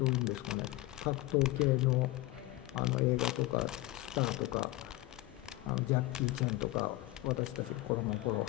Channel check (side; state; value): right; quieter; 18.1 dB